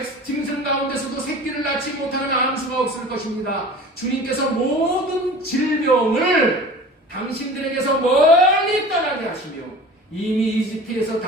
짐승 가운데서도 새끼를 낳지 못하는 암수가 없을 것입니다. 주님께서 모든 질병을 당신들에게서 멀리 떠나게 하시며 이미 이집트에서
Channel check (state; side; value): normal; both; correlation 0.40